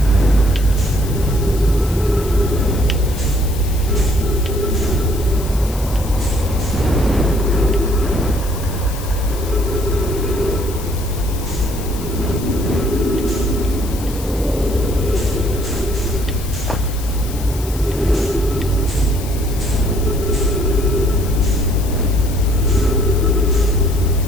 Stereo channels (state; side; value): noise; left; hiss, 14 dB below the sound